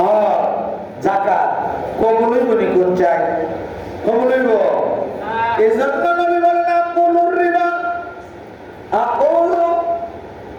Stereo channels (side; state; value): both; identical; correlation 1.00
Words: যাকাত কবুল হইব নি? কোন চাই? কবুল হইব? এই জন্য নবী বলেন, আকুলুর রিবা,